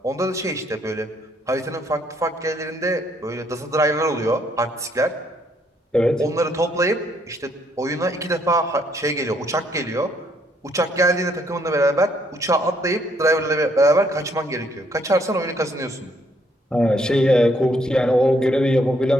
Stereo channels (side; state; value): both; normal; correlation 0.69